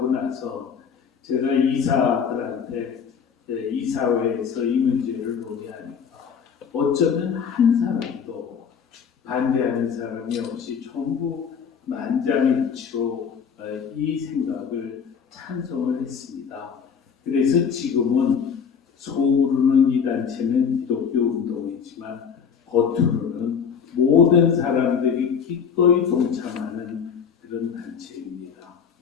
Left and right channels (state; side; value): quieter; right; 6.8 dB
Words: 나서 제가 이사들한테 이사회에서 이 문제를 논의하니까 어쩌면 한 사람도 반대하는 사람이 없이 전부 만장일치로 이 생각을 찬성을 했습니다. 그래서 지금은 속으로는 이 단체는 기독교 운동이지만 겉으로는 모든 사람들이 기꺼이 동참하는 그런 단체입니다.